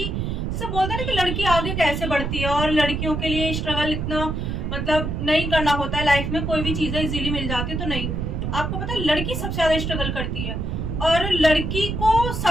जैसे बोलते हैं ना कि लड़की आगे कैसे बढ़ती है और लड़कियों के लिए स्ट्रगल इतना मतलब नहीं करना होता है, लाइफ में कोई भी चीजें इजीली मिल जाती है तो नहीं, आपको पता है लड़की सबसे ज्यादा स्ट्रगल करती है और लड़की को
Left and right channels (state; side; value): noise; right; rumble, 3 dB below the sound